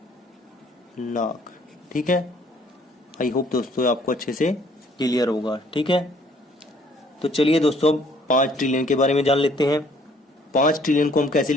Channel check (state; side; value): normal; both; correlation 0.61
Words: लाख। ठीक है, आई होप दोस्तों आपको अच्छे से क्लियर होगा। ठीक है, तो चलिए दोस्तों अब 5 ट्रिलियन के बारे में जान लेते हैं। 5 ट्रिलियन को हम कैसे